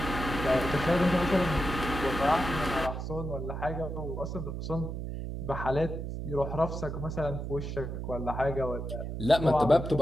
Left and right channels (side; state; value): right; noise; hum, 5 dB below the sound